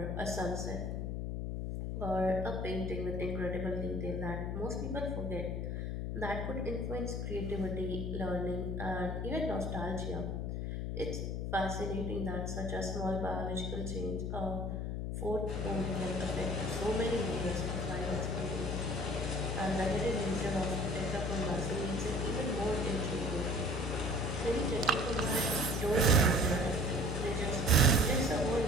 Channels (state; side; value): noise; left; hum, 2 dB below the sound